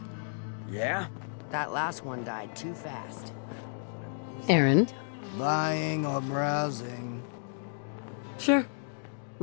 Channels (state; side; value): silent; right; digital silence